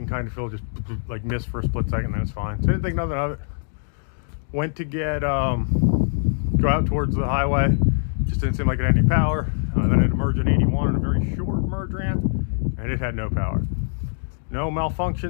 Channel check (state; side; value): silent; right; digital silence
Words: kind of feel just like miss for a split second, then it's fine. So I didn't think nothing of it. Went to get, go out towards the highway. Just didn't seem like it had any power. Then I had to merge an 81 on a very short merge ramp, and it had no power. No